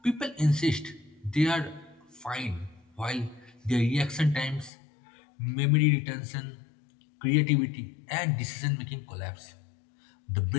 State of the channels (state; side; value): drops out; right; at 4.7 s